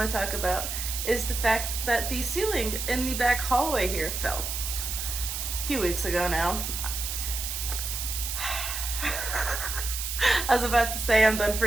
to talk about is the fact that the ceiling in the back hallway here fell a few weeks ago now. I was about to say I'm done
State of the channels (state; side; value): noise; right; hiss, 4 dB below the sound